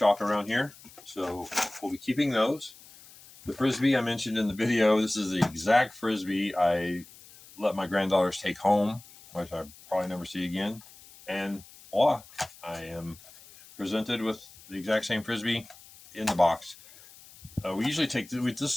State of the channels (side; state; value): left; noise; hiss, 21 dB below the sound